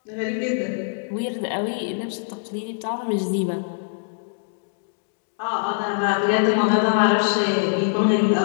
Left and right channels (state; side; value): silent; right; digital silence